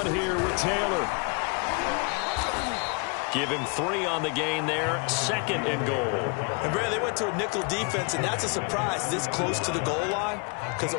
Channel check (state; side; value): quieter; right; 33.1 dB